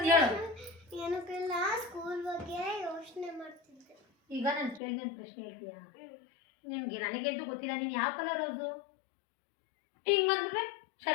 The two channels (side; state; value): right; drops out; at 4.8 s